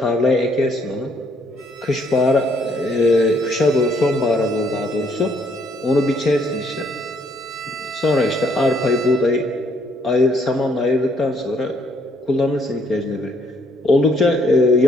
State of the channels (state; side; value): normal; both; correlation 0.68